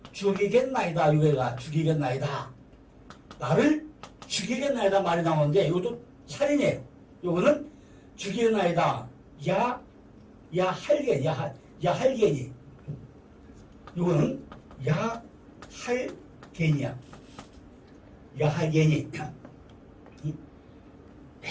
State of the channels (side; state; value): both; identical; correlation 1.00